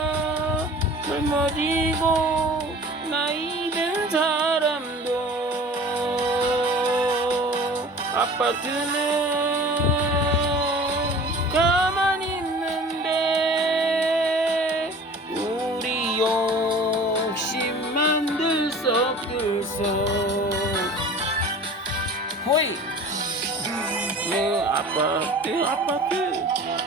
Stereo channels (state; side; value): normal; both; correlation 0.42